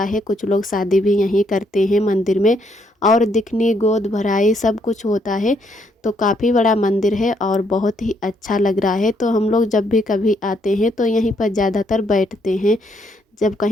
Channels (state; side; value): normal; both; correlation 0.72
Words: है, कुछ लोग शादी भी यहीं करते हैं मंदिर में, और दिखनी गोद भराई सब कुछ होता है। तो काफ़ी बड़ा मंदिर है और बहुत ही अच्छा लग रहा है। तो हम लोग जब भी कभी आते हैं तो यहीं पर ज़्यादातर बैठते हैं जब